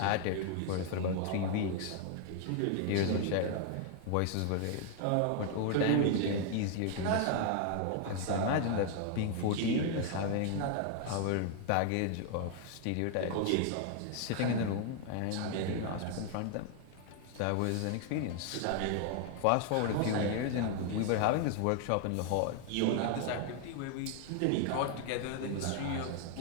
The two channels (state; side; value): different; both; correlation 0.00